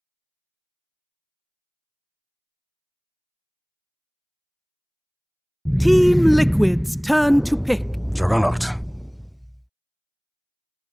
Team Liquid's turn to pick. Juggernaut.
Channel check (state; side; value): identical; both; correlation 1.00